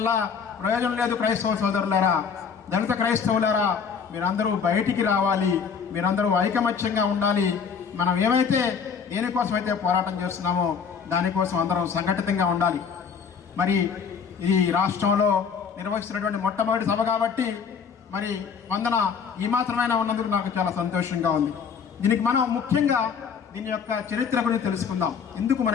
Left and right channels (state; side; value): quieter; right; 6.4 dB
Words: ప్రయోజనం లేదు. క్రైస్తవ సోదరులారా, దళిత క్రైస్తవులారా, మీరందరూ బయటికి రావాలి, మీరందరూ ఐకమత్యంగా ఉండాలి. మనం ఏమైతే దేనికోసమైతే పోరాటం చేస్తున్నామో దానికోసం అందరం సంఘటితంగా ఉండాలి. మరి ఈ రాష్ట్రంలో నిర్వహిస్తున్నటువంటి మొట్టమొదటి సభ కాబట్టి మరి వందన ఈ మాత్రమైనా ఉన్నందుకు నాకు చాలా సంతోషంగా ఉంది. దీనికి మనం ముఖ్యంగా దీని యొక్క చరిత్ర గురించి తెలుసుకుందాం, ఎందుకు